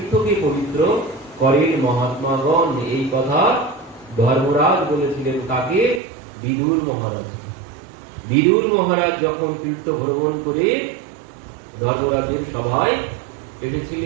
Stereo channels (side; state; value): left; drops out; at 6.0 s